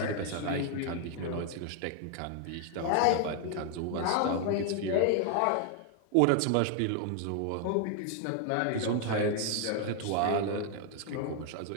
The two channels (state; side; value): different; both; correlation 0.00